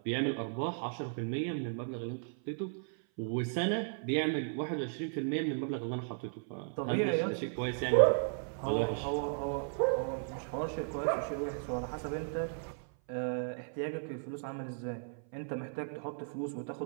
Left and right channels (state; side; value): silent; left; 54 dB below the other